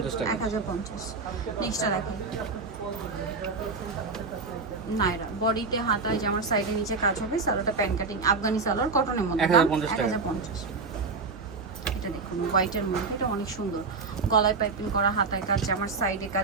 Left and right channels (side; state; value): left; quieter; 4.3 dB